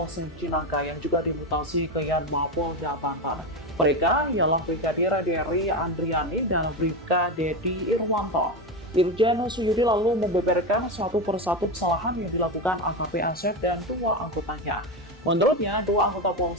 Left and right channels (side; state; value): both; normal; correlation 0.15